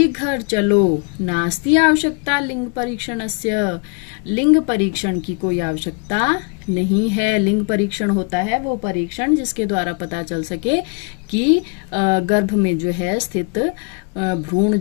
घर चलो। नास्ति आवश्यकता लिंग परीक्षणस्य, लिंग परीक्षण की कोई आवश्यकता नहीं है। लिंग परीक्षण होता है वो परीक्षण जिसके द्वारा पता चल सके कि गर्भ में जो है स्थित भ्रूण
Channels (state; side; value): quieter; right; 35.3 dB